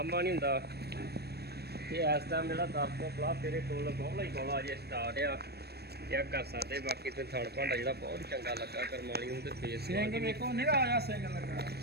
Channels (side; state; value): left; late; 0.47 ms